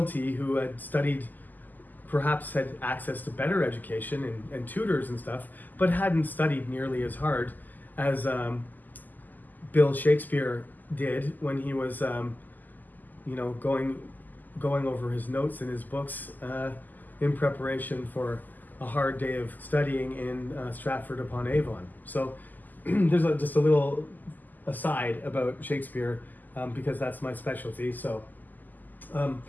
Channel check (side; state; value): right; late; 0.085 ms